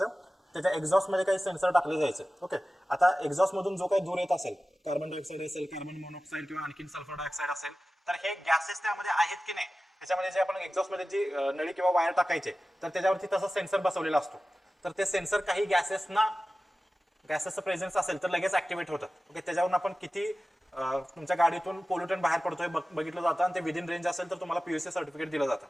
त्याच्या एक्झॉस्ट मध्ये काही सेन्सर टाकले जायचे. ओके, आता एक्झॉस्ट मधून जो काही धूर येत असेल, कार्बन डायऑक्साईड असेल, कार्बन मोनॉक्साईड किंवा आणखी सल्फर डायऑक्साईड असेल, तर हे गॅसेस त्यामध्ये आहेत की नाही, त्याच्यामध्ये जे आपण एक्झॉस्ट मध्ये जी नळी किंवा वायर टाकायचे तर त्याच्यावरती तसा सेन्सर बसवलेला असतो. तर ते सेन्सर काही गॅसेसचं प्रेझेन्स असेल तर लगेच ऍक्टिव्हेट होतात. ओके, त्याच्यावरून आपण किती तुमच्या गाडीतून पोल्युटंट बाहेर पडतोय बघितलं जातं आणि ते विदिन रेंज असेल तर तुम्हाला पीयूसी सर्टिफिकेट दिलं जातं.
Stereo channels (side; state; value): both; normal; correlation 0.95